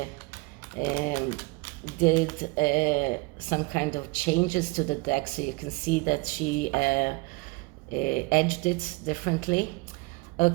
did some kind of changes to the deck, so you can see that she edged it differently.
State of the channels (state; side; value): quieter; left; 25.1 dB